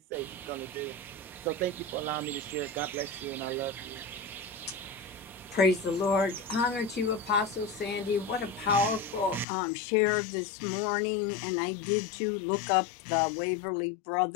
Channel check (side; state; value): right; drops out; at 9.5 s